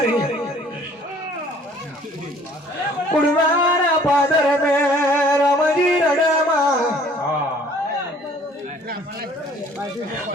कुड़वारा पादर में रामजी रडमा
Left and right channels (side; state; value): both; normal; correlation 0.55